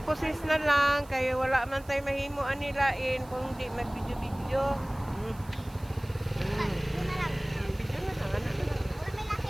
na lang kay wala man tay mahimo anilain kung di mag-video-video. Video na lang. Video na lang, ano na lang. Wala may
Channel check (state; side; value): noise; right; hiss, 24 dB below the sound